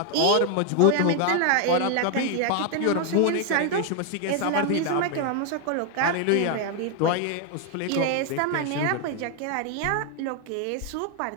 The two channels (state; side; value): different; both; correlation 0.00